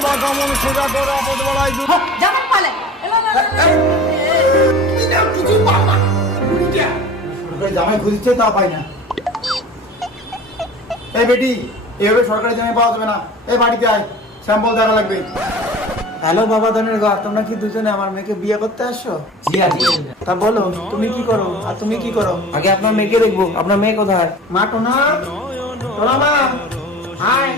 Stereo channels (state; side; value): normal; both; correlation 0.41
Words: জামাই পালে সরকারি জামাই খুঁজছে, তা পাই না। এই বেটি, এভাবে সরকারি জামাই পাওয়া যাবে না। এই বাড়িতে আয়, স্যাম্পল দেখা লাগবে। হ্যালো বাবা ধনের ঘর, তোমরা কি দুজনে আমার মেয়েকে বিয়ে করতে আসছো? জি আজকে। তা বলো তুমি কি করো আর তুমি কি করো? আগে আপনার মেয়েকে দেখবো। আপনার মেয়ে কোথায়? মা টোনা, টোনা মা, হাই।